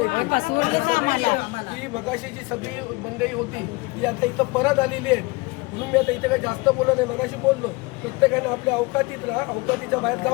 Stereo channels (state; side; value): quieter; right; 24.8 dB